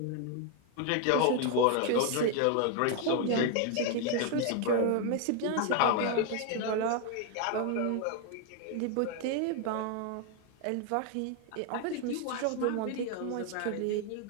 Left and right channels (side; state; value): both; different; correlation 0.01